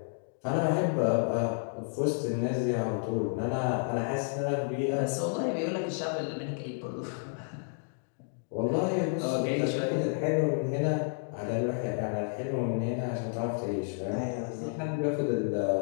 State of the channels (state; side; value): silent; right; 57 dB below the other